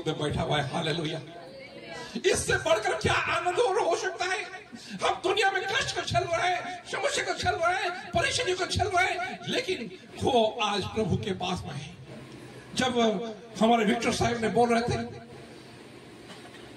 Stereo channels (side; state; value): both; identical; correlation 1.00